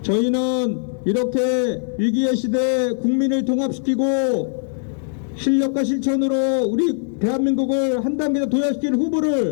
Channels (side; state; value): right; silent; digital silence